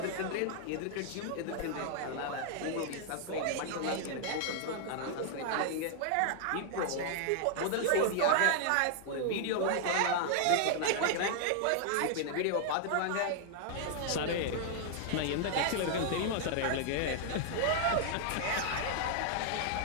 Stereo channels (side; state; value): both; different; correlation 0.00